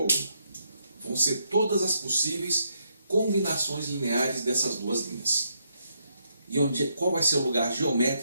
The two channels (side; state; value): both; inverted; correlation -0.77